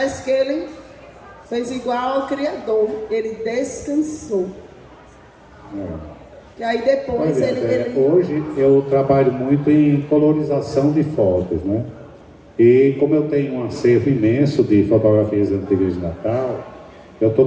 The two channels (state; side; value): identical; both; correlation 1.00